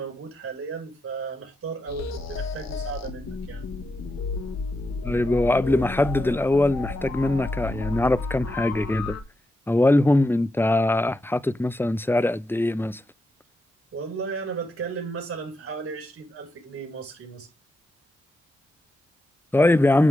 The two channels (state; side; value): normal; both; correlation 0.86